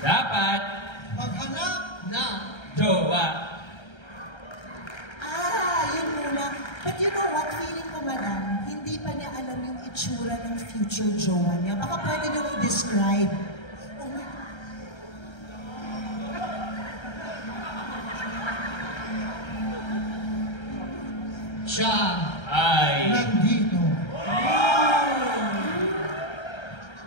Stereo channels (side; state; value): right; late; 1.3 ms